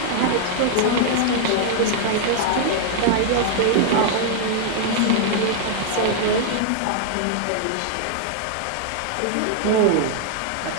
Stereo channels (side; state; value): both; different; correlation 0.00